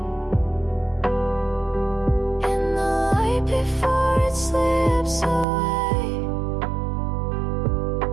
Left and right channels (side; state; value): left; drops out; at 5.5 s